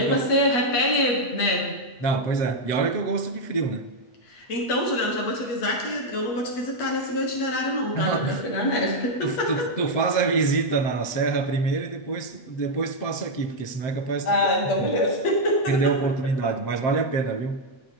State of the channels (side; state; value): right; late; 8.3 ms